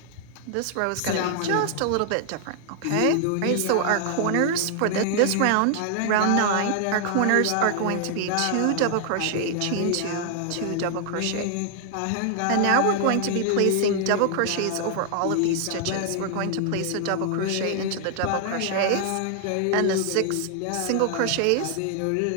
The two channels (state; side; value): different; both; correlation 0.00